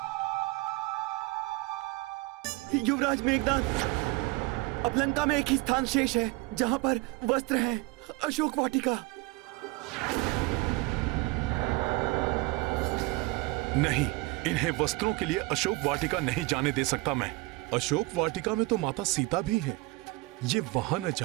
युवराज मेघनाद, अब लंका में एक ही स्थान शेष है जहाँ पर वस्त्र हैं, अशोक वाटिका। नहीं, इन्हें वस्त्रों के लिए अशोक वाटिका नहीं जाने दे सकता मैं। अशोक वाटिका में तो माता सीता भी है। ये वहां न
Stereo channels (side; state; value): left; quieter; 22.6 dB